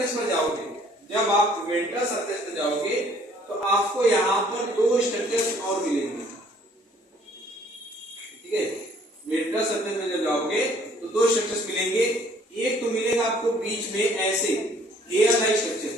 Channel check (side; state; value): both; normal; correlation 0.59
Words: पर जाओगे, जब आप वेंट्रल सरफेस पर जाओगे तो आपको यहाँ पर दो स्ट्रक्चर्स और मिलेंगे, ठीक है। वेंट्रल सरफेस में जब जाओगे तो दो स्ट्रक्चर्स मिलेंगे। एक तो मिलेगा आपको बीच में ऐसे हेयर लाइक